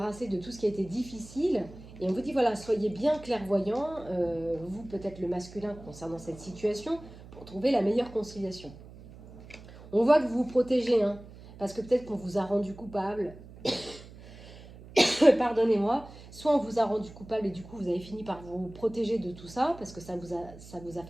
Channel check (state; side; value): noise; right; hum, 18 dB below the sound